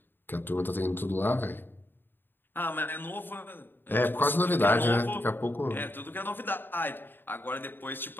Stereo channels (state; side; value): late; right; 0.096 ms